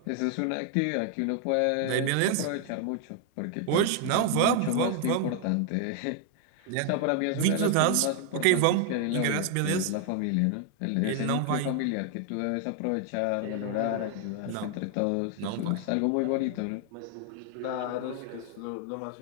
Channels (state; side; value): different; both; correlation 0.00